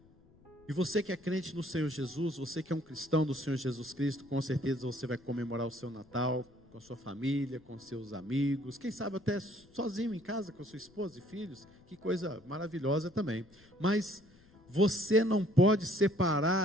E você que é crente no Senhor Jesus, você que é um cristão do Senhor Jesus Cristo, com certeza você vai comemorar o seu Natal com a sua família, com seus amigos, quem sabe até sozinho em casa com a sua esposa e filhos, que coisa maravilhosa também. Mas você não pode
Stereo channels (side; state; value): left; noise; rumble, 28 dB below the sound